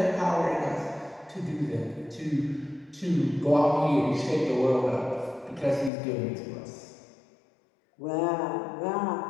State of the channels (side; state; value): right; drops out; at 5.9 s